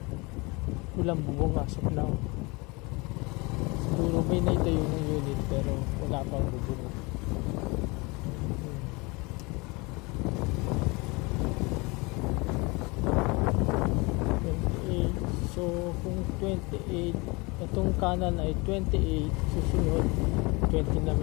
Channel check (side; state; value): right; quieter; 26.3 dB